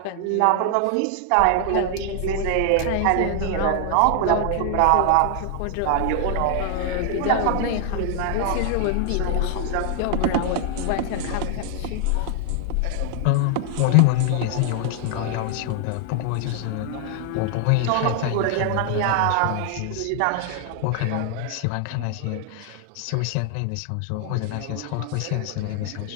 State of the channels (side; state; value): both; different; correlation 0.00